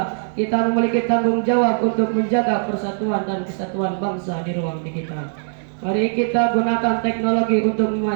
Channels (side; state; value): left; silent; digital silence